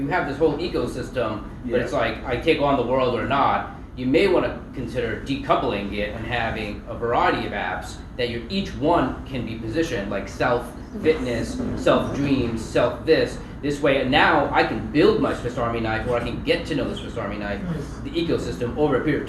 have this whole ecosystem, but it's like, I take on the world or not. You may want to consider decoupling it and having a variety of apps that each one can be positioned, like self-fitness, self-dreams, self-this. This way, now I can build my Swiss Army knife, or I can get to know the Swiss Army knife, the ecosystem over a period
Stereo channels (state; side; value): identical; both; correlation 1.00